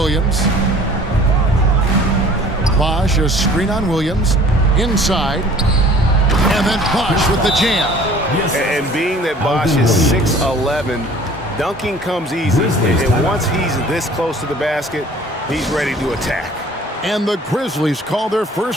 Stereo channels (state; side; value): normal; both; correlation 0.50